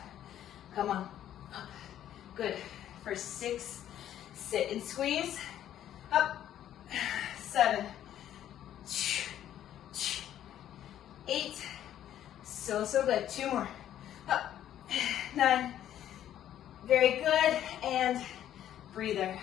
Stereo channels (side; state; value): right; quieter; 11.3 dB